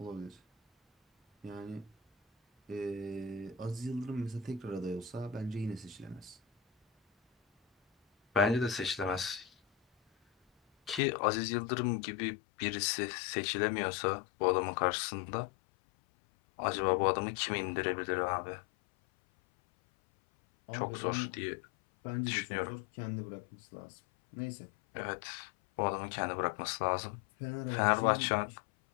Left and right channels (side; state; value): right; drops out; at 11.0 s